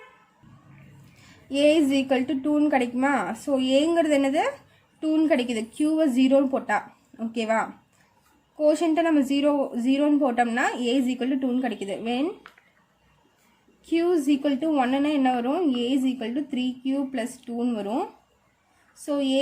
2ன்னு கிடைக்குமா? ஸோ ஏங்கிறது என்னது? 2ன்னு கிடைக்குது. க்யூவை 0ன்னு போட்டால். ஓகேவா? கோஷன்ட்டை நம்ம 0ன்னு போட்டோம்னா a is equal to 2ன்னு கிடைக்குது. when q is equal to 1ன்னா என்ன வரும்? a is equal to 3q plus 2ன்னு வரும். So a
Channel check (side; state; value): both; identical; correlation 1.00